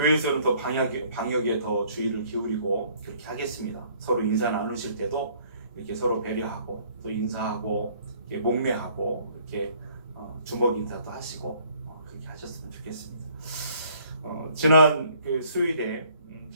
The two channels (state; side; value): inverted; both; correlation -0.60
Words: 더 방역에 더 주의를 기울이고 그렇게 하겠습니다. 서로 인사 나누실 때도 이렇게 서로 배려하고 또 인사하고 이렇게 목례하고 이렇게 주먹 인사도 하시고 그렇게 하셨으면 좋겠습니다. 지난 그 수요일에